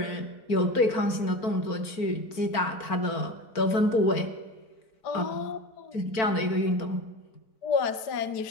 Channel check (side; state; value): right; late; 4.5 ms